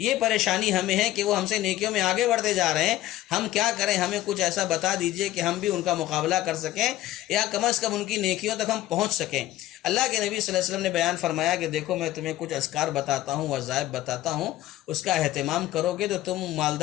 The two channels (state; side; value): quieter; right; 14.9 dB